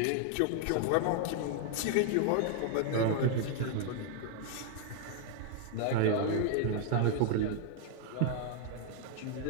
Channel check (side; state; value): both; different; correlation 0.00